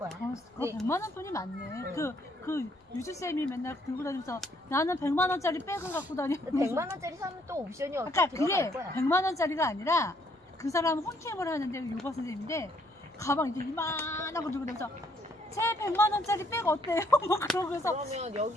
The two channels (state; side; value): normal; both; correlation 0.68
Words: 그거 네. 100만 원 돈이 많네. 그 유주쌤이 맨날 들고 다니면서 나는 100만 원짜리 백을 갖고 다니고. 100만 원짜리 사면 또 옵션이 그러니까 어떻게 그게 들어갈 거야. 100만 원짜리가 아니라 그 사람 홈캠을 하는데 요가 선생님인데 가방 이렇게 이만하고 들고 다니면서 제 100만 원짜리 백 어때요? 뭐 그러고서 그러면